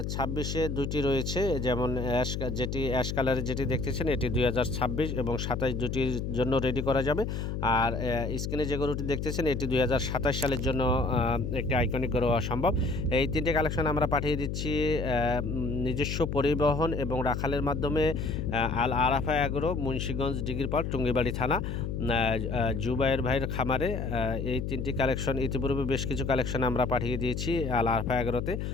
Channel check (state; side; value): noise; left; hum, 3 dB below the sound